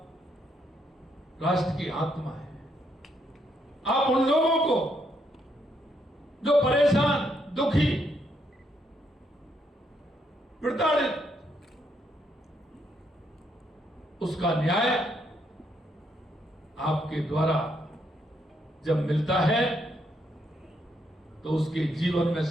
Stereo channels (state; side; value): normal; both; correlation 0.75